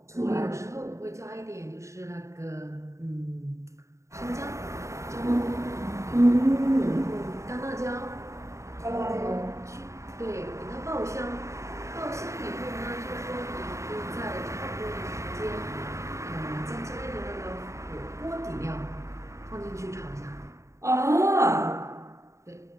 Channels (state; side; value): late; left; 0.14 ms